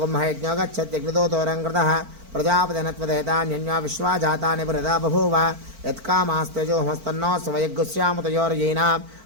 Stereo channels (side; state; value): left; late; 4.5 ms